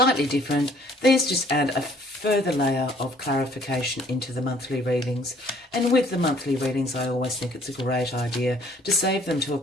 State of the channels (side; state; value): both; normal; correlation 0.59